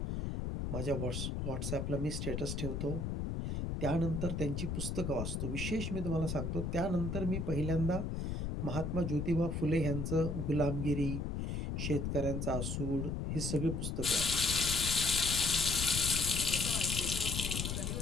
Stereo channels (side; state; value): left; noise; rumble, 2 dB below the sound